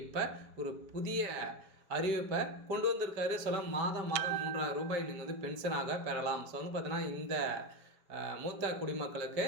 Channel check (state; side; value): late; left; 4.9 ms